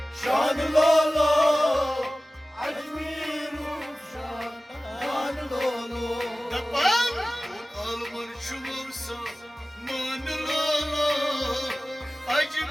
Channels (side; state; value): both; normal; correlation 0.97